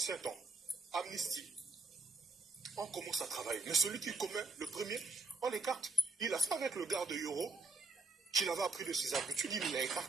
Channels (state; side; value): quieter; left; 3.7 dB